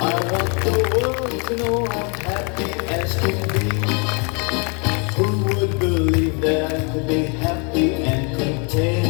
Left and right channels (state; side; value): quieter; right; 34.9 dB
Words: I want the world to know I'm happy as can be. Who would believe that I could be happy and